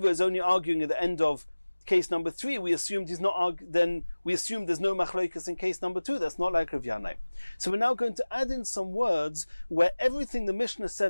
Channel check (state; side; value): inverted; both; correlation -1.00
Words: is only arguing at the end of case number 3, we assumed he's not then we assume there's no machloikas in case number 2. That's not like Rav Yanai. So we're now going to add in some words where everything the Mishnah